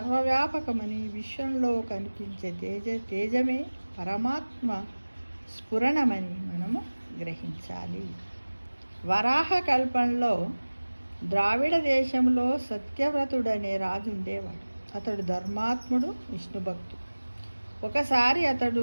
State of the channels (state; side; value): inverted; both; correlation -1.00